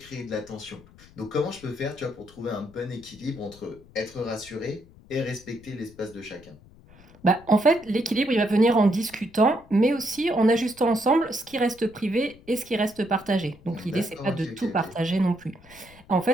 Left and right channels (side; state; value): left; noise; rumble, 24 dB below the sound